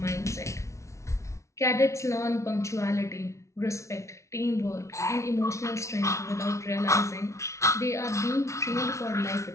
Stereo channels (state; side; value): late; right; 0.14 ms